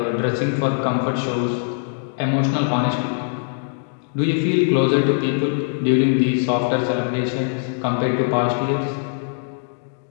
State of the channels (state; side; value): silent; right; digital silence